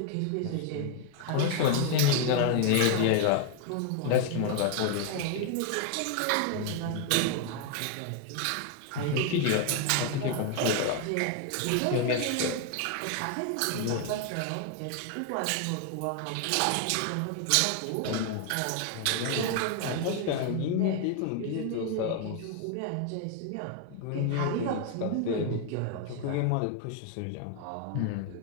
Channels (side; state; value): both; different; correlation 0.01